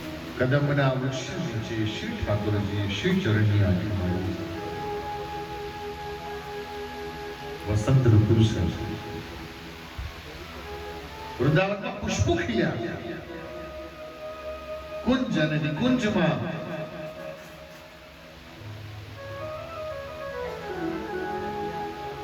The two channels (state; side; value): identical; both; correlation 1.00